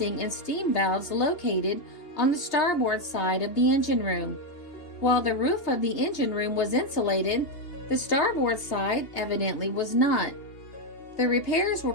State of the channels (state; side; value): late; right; 2.8 ms